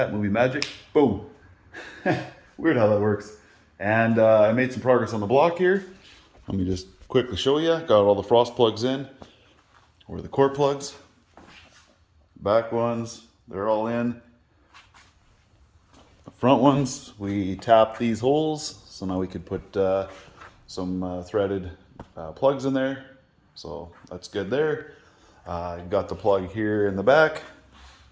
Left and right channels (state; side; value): identical; both; correlation 1.00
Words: movie magic, boom. Weird how that works. And I made some progress on the block here. Let me just quickly show you. Got all the frost plugs in, or the core plugs. Back ones, they're all in. The front ones, we tapped these holes, so now we could put some threaded plugs in there. So that's good there. Got the plug here in the back.